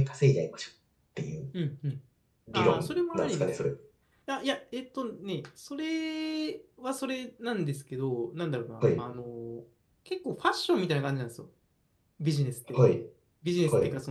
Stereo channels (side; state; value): both; identical; correlation 1.00